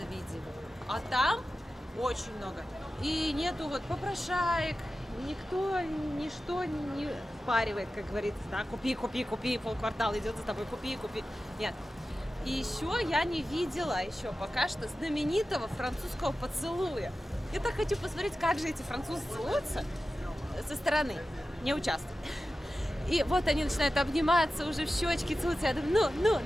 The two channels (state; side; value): normal; both; correlation 0.94